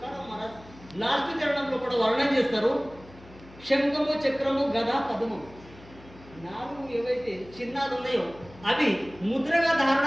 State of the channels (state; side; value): noise; left; hum, 21 dB below the sound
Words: మహారాజ్ లాస్ట్ చరణంలో కూడా వర్ణన చేస్తారు. శంఖము, చక్రము, గద, పద్మము 4 ఏవైతే చిహ్నాలు ఉన్నాయో అవి ముద్రగా ధారణ